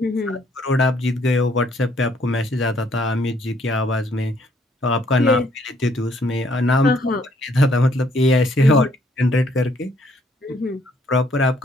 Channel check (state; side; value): normal; both; correlation 0.66